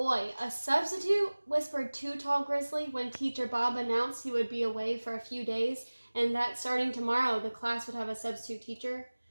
a substitute, whispered Too Tall Grizzly when Teacher Bob announced he would be away for a few days and that starting tomorrow the class would have a substitute teacher.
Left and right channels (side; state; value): both; inverted; correlation -1.00